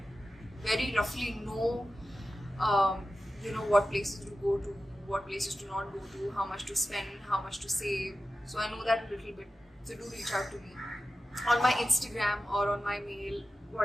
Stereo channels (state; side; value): normal; both; correlation 0.94